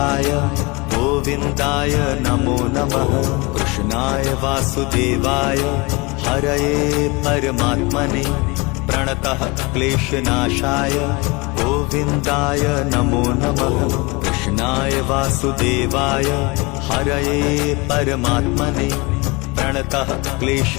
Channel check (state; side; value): quieter; right; 26.3 dB